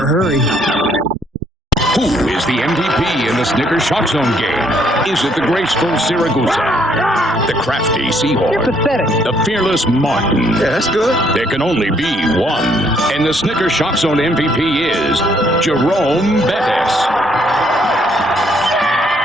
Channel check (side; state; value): both; normal; correlation 0.68